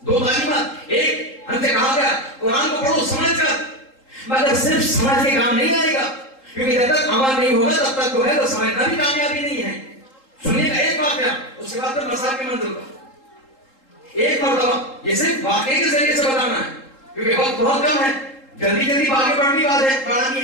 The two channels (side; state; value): right; late; 3.8 ms